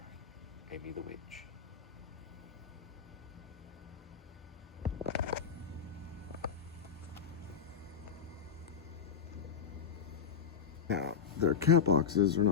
Amy the Witch. Now, their cat boxes are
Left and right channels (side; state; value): right; quieter; 7.1 dB